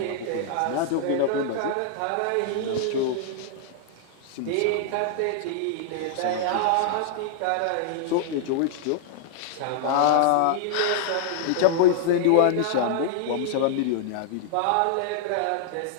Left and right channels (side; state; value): both; different; correlation -0.01